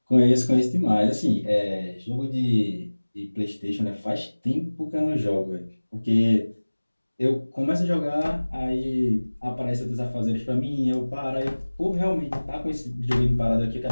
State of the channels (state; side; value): inverted; both; correlation -1.00